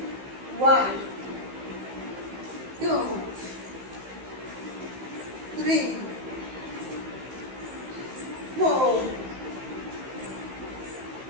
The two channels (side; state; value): left; late; 15 ms